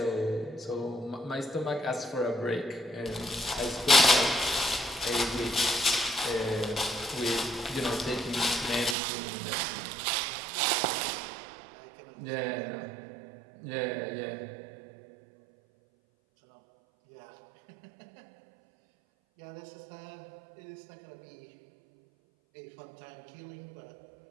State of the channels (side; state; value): left; drops out; at 9.0 s